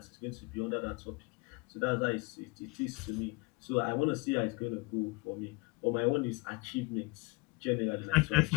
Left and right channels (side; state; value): right; quieter; 26.2 dB